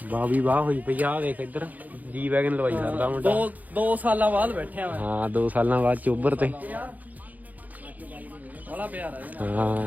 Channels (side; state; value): left; late; 0.080 ms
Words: ਵਾਹ ਵੀ ਵਾਹ ਹੋਈ ਪਈ ਆ। ਦੇਖ ਇੱਧਰ ਜੀ ਵੈਗਨ ਲਵਾਈ ਕਰਦਾ ਮੁੰਡਾ। 2 ਸਾਲਾਂ ਬਾਅਦ ਬੈਠਿਆ ਮੈਂ। ਹਾਂ 2 ਸਾਲਾਂ ਬਾਅਦ ਚੋਬਰ ਤੇ ਬੜਾ ਪਿਆਰ ਹੈ।